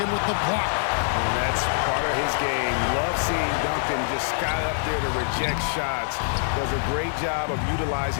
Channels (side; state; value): right; silent; 57 dB below the other